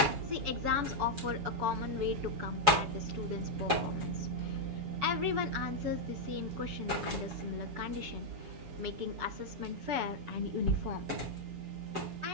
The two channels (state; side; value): late; left; 7.0 ms